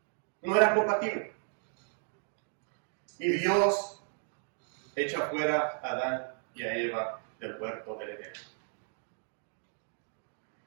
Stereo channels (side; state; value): left; silent; digital silence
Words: No era compatible. Y Dios echa fuera a Adán y a Eva del huerto del Edén.